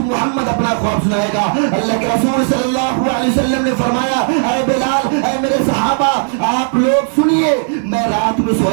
محمد اپنا خواب سنائے گا. اللہ کے رسول صلی اللہ علیہ وسلم نے فرمایا اے بلال, اے میرے صحابہ آپ لوگ سنیے, میں رات میں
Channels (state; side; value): silent; left; digital silence